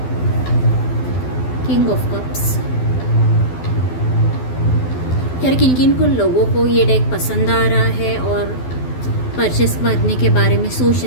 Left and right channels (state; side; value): late; right; 12 ms